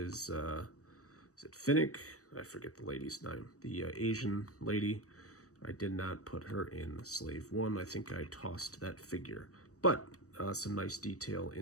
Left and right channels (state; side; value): late; right; 0.66 ms